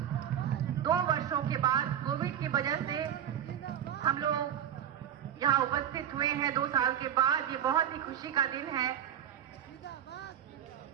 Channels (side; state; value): left; quieter; 9.9 dB